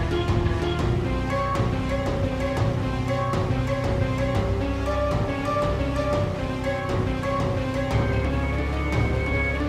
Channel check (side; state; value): both; identical; correlation 1.00